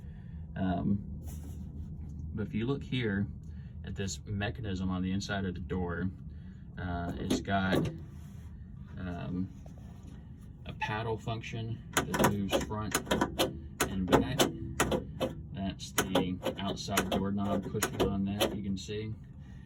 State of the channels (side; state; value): both; identical; correlation 1.00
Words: But if you look here at this mechanism on the inside of the door, it's got a paddle function that moves front and back. That's the outside doorknob pushing on that, you can see.